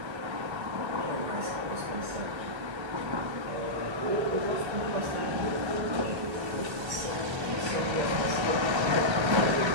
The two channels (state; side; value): late; left; 1.3 ms